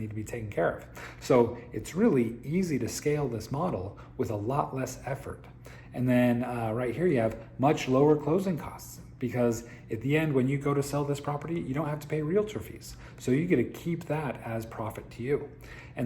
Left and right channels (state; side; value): identical; both; correlation 1.00